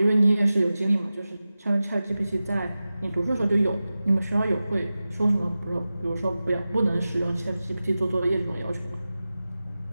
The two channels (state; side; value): inverted; both; correlation -0.95